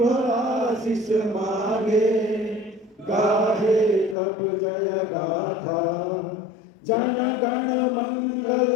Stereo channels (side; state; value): right; drops out; at 4.2 s